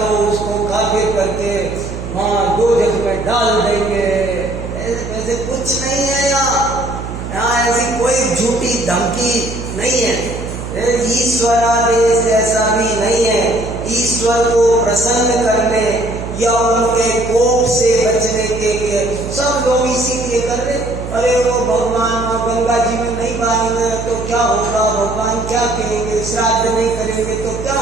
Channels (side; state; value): right; noise; hum, 8 dB below the sound